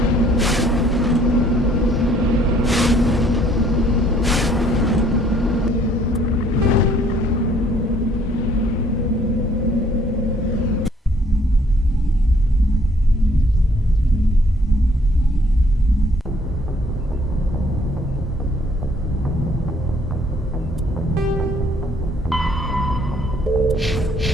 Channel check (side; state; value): both; normal; correlation 0.62